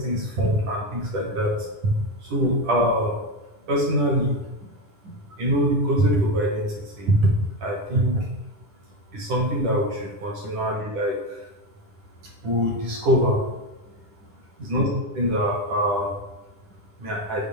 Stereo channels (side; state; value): left; late; 10 ms